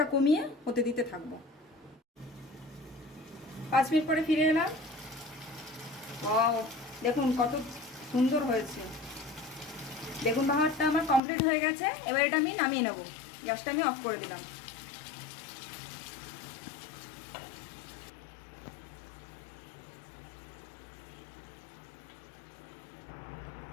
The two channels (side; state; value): right; drops out; at 11.2 s